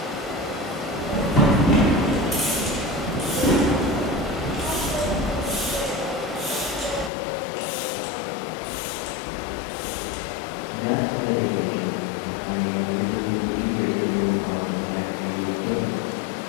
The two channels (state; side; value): drops out; right; at 7.1 s